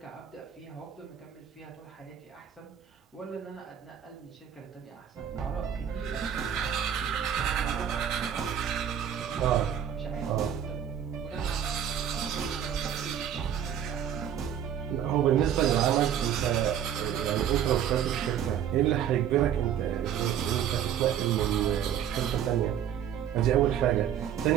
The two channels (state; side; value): quieter; left; 9.4 dB